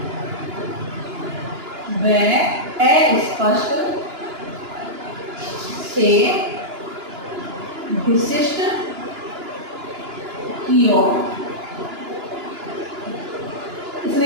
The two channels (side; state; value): left; late; 2.9 ms